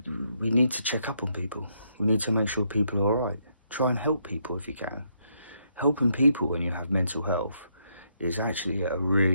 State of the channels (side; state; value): both; inverted; correlation -0.75